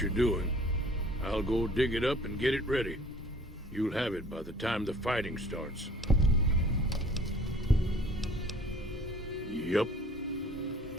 you're doing. I'll go dig it up and get it ready. You'll have it by the time the fighting starts. Yup.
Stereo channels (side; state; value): both; normal; correlation 0.51